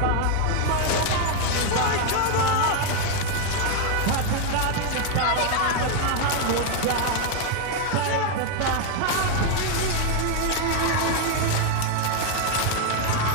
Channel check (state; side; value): different; both; correlation 0.01